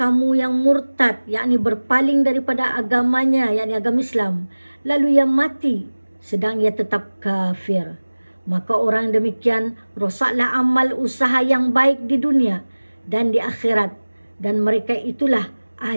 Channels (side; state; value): both; inverted; correlation -1.00